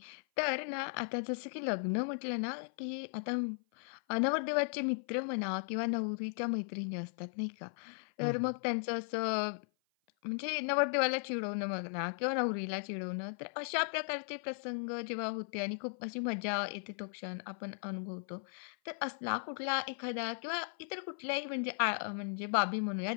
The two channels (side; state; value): right; silent; 53 dB below the other